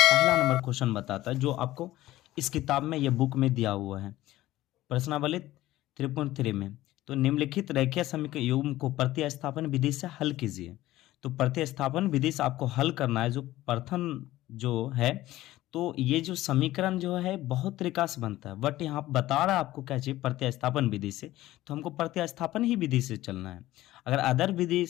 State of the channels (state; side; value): quieter; right; 15.9 dB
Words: पहला नंबर क्वेश्चन बताता है जो आपको इस किताब में, ये बुक में दिया हुआ है प्रश्नावली 3.3 में। तो निम्नलिखित रेखीय समीकरण युग्म को प्रतिस्थापन विधि से हल कीजिए। तो प्रतिस्थापन विधि से आपको हल करना है। जो प्रथम जो है, तो ये जो समीकरण जो है बहुत तरीका से बनता है, बट यहाँ बता रहा है आपको क्या चाहिए, प्रतिस्थापन विधि से। तो हमको प्रतिस्थापन ही विधि से चलना है। अगर अदर विधि